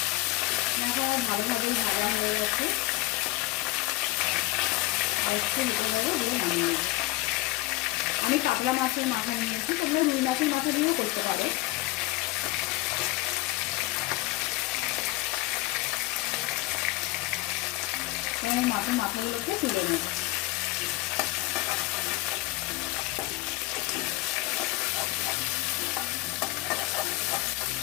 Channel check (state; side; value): quieter; right; 19.3 dB